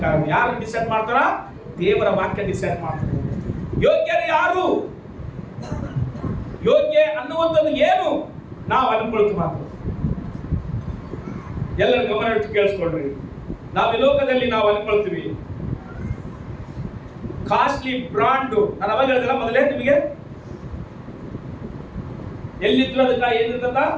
ಯಾರು ಡಿಸೈಡ್ ಮಾಡ್ತಾರ? ದೇವರ ವಾಕ್ಯ ಡಿಸೈಡ್ ಮಾಡ್ತಾರೆ. ಯೋಗ್ಯರು ಯಾರು, ಯೋಗ್ಯ ಅನ್ನುವಂಥದ್ದು ಏನು ನಾವು ಅನ್ಕೊಳ್ತೀವಿ ಮಾತು. ಎಲ್ಲರ ಗಮನ ಇಟ್ಟು ಕೇಳಿಸ್ಕೊಡ್ರಿ. ನಾವು ಈ ಲೋಕದಲ್ಲಿ ನಾವು ಅನ್ಕೊಳ್ತೀವಿ ಕಾಸ್ಟ್ಲಿ ಬ್ರಾಂಡ್. ನಾನು ಅವಾಗ ಹೇಳಿದ್ರ ಮೊದಲೇ ನಿಮಗೆ, ಎಲ್ಲಿದ್ರು ಅದಕ್ಕ ಏನಿರ್ತದ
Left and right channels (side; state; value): both; identical; correlation 1.00